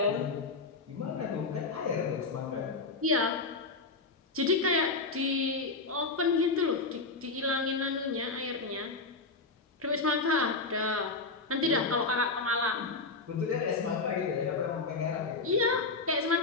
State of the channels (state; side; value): quieter; right; 3.8 dB